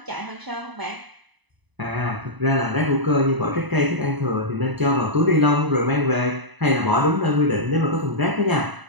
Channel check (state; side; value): late; left; 1.0 ms